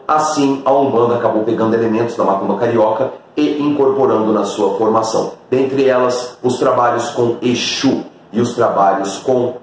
assim, a Umbanda acabou pegando elementos da macumba carioca e incorporando na sua formação. Dentre elas, os trabalhos com Exu e os trabalhos com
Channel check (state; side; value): identical; both; correlation 1.00